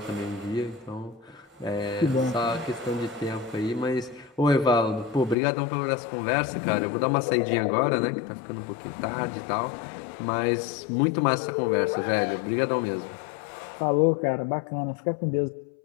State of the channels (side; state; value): right; drops out; at 5.4 s